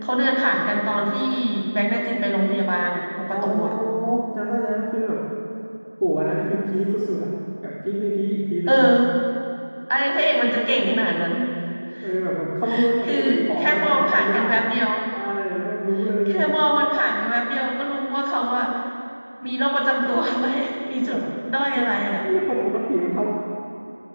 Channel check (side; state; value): both; inverted; correlation -1.00